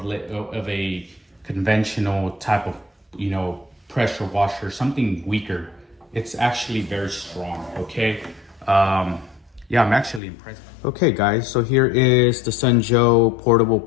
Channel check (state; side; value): drops out; right; at 10.2 s